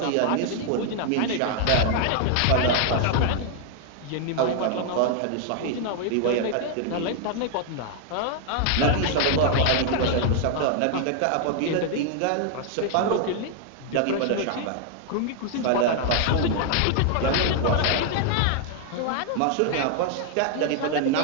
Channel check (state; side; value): different; both; correlation 0.00